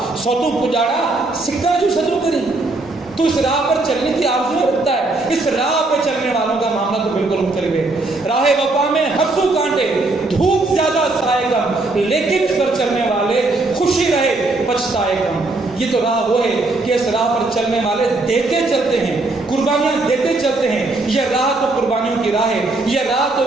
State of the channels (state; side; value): quieter; left; 3.1 dB